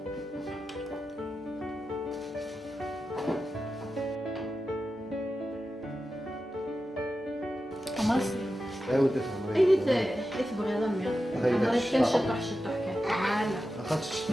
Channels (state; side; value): normal; both; correlation 0.91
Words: خلاص ايوا تفهم. اي تبغي ضمي هاي انا داك كان الشطح. شطح كان تعال اخذت